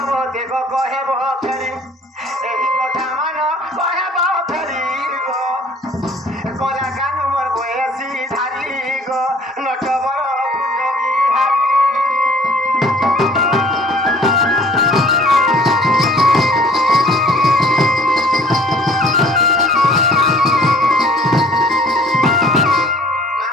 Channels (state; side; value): normal; both; correlation 0.52